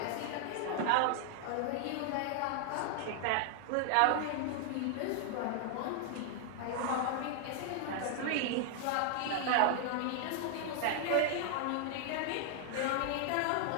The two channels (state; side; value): different; both; correlation 0.00